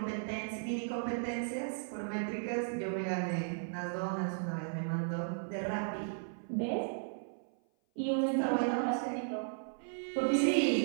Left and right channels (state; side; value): silent; left; 54 dB below the other